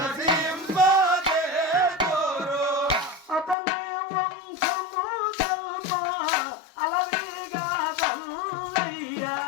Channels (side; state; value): right; drops out; at 3.6 s